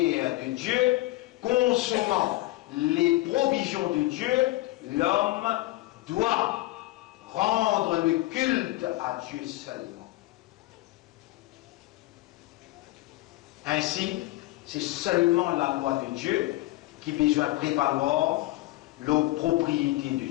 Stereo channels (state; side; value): quieter; right; 18.4 dB